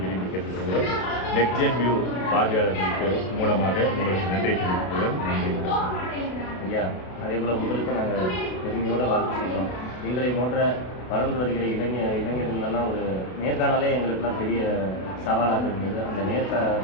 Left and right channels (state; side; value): late; right; 32 ms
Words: விரும்பி கேட்டுக்கொள்கிறோம். நெக்ஸ்ட் ஜென் வியூ பார்வையாளர்களுக்கு மூலமாக உங்களுக்கு நன்றி தெரிவிக்கிறோம். நன்றி ஐயா. அதே போல் உங்களுக்கு நாங்கள் பெருமையோடு வாழ்த்து செய்கிறோம். எங்களை போன்ற வளர்ந்து வருகிற இளைஞர்களெல்லாம் ஒரு நேர்காணலே எங்களுக்கெல்லாம் பெரிய சவாலாக இருந்தது. அந்த